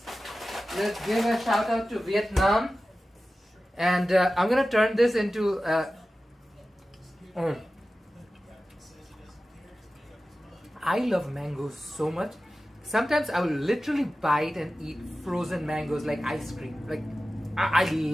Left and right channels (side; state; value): both; normal; correlation 0.95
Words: Let's give a shout out to Vietnam. And I'm gonna turn this into. I love mangoes so much. Sometimes I will literally bite and eat frozen mangoes like ice cream. Like I